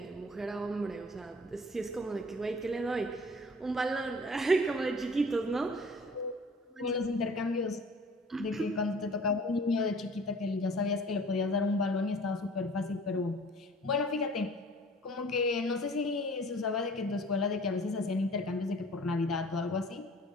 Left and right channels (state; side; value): normal; both; correlation 0.49